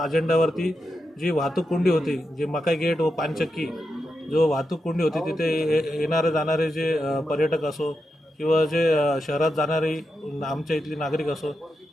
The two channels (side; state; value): both; normal; correlation 0.87